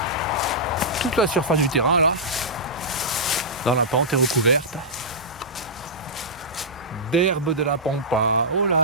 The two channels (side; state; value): both; normal; correlation -0.15